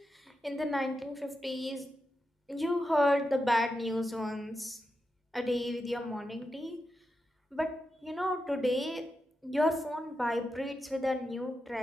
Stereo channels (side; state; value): both; normal; correlation 0.88